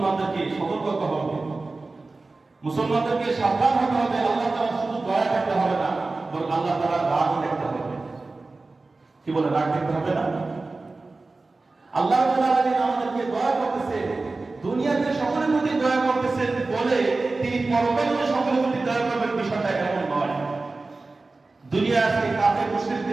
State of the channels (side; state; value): left; quieter; 3.5 dB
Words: সতর্ক হতে হবে, মুসলমানদেরকে সাবধান হতে হবে। আল্লাহ তাআলা শুধু দয়া করতে হবে না, বরং আল্লাহ তাআলা রাগও দেখতে হবে। কি বলে, রাগ দেখতে হবে না? আল্লাহ রাব্বুল আলামিন আমাদেরকে দয়া করতেছে, দুনিয়াতে সকলের প্রতি দয়া করতেছেন বলে তিনি পরকালে সকলের প্রতি দয়া করবেন, বিষয়টা এমন নয়। দুনিয়া আজকে কাফের